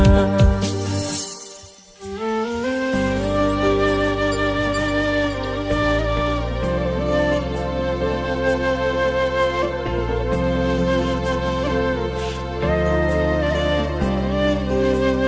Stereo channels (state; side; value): identical; both; correlation 1.00